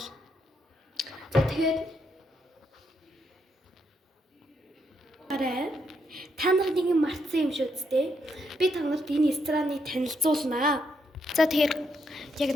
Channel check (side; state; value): both; normal; correlation 0.78